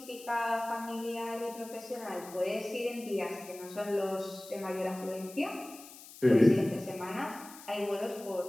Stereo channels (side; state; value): left; noise; hiss, 17 dB below the sound